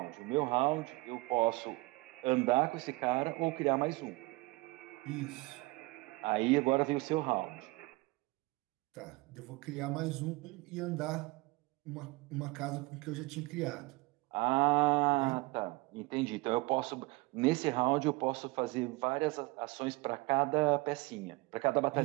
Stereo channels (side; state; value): left; quieter; 23.7 dB